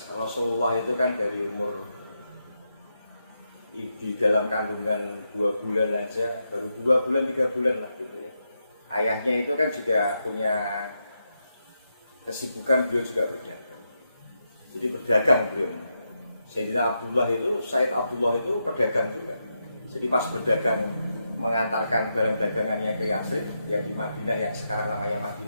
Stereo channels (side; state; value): both; inverted; correlation -0.85